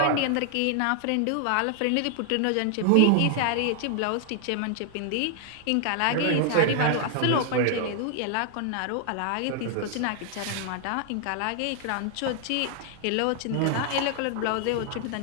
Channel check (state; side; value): different; both; correlation 0.00